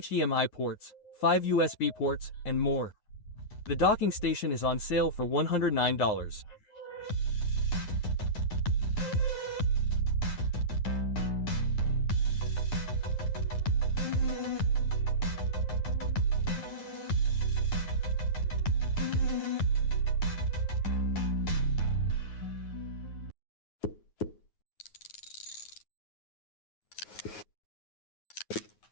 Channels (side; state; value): right; late; 9.4 ms